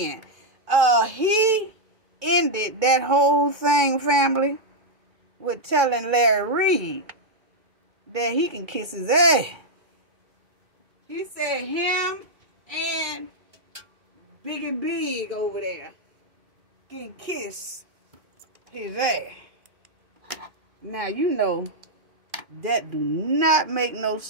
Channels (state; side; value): late; left; 2.2 ms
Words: he ended that whole thing, family, with telling Larry Reid that he can kiss his ass. He said him and Big over there can kiss his ass. Now, you know that do not make no